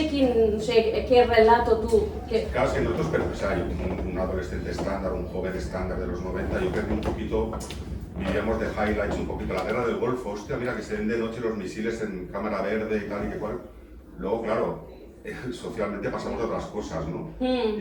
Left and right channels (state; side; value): identical; both; correlation 1.00